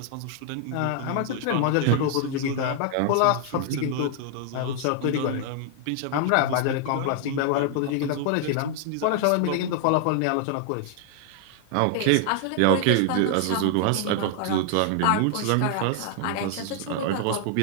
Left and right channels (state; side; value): different; both; correlation 0.00